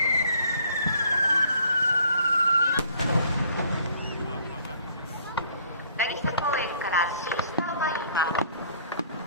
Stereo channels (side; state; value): both; inverted; correlation -0.57